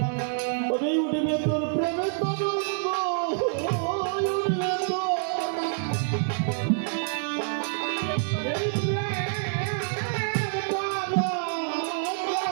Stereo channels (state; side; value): silent; left; digital silence